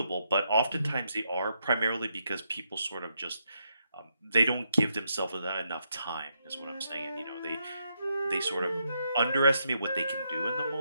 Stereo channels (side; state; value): both; inverted; correlation -0.80